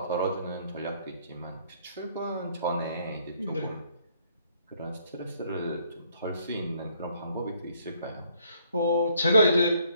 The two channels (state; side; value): inverted; both; correlation -0.66